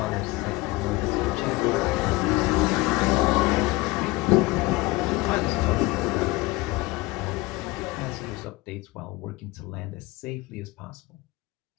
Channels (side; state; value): right; quieter; 21.1 dB